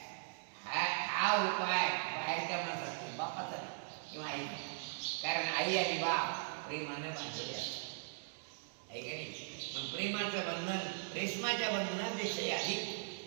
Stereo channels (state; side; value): silent; left; digital silence